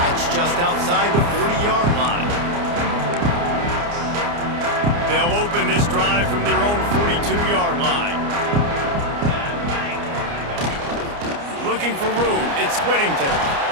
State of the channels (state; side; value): late; left; 29 ms